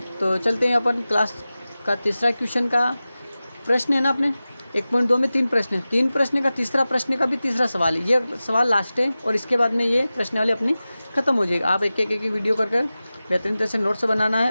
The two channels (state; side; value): inverted; both; correlation -0.96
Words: तो चलते हैं अपन क्लास का तीसरा क्वेश्चन का प्रश्न है ना अपने 1.2 में 3 प्रश्न है। 3 प्रश्न का तीसरा प्रश्न का भी तीसरा सवाल है, ये सवाल लास्ट है और इसके बाद में ये प्रश्नावली अपनी ख़त्म हो जाएगी। आप एक एक वीडियो कर बेहतरीन तरह से नोट्स बनाना है